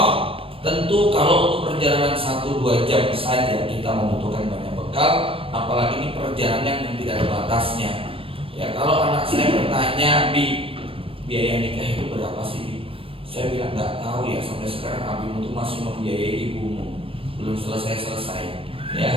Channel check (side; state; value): left; late; 0.26 ms